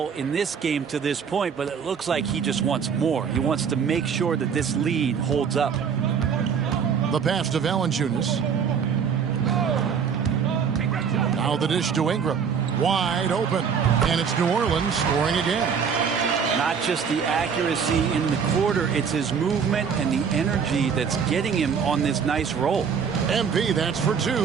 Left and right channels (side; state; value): left; quieter; 6.7 dB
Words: in this game to this point, but it looks like he just wants more. He wants to make sure that this lead holds up. The pass to Valanciunas. Now the dish to Ingram. Wide open. And it's New Orleans scoring again. Not just the accuracy in the quarter, it's his movement and the energy that's getting him on this nice roll. MP, that's for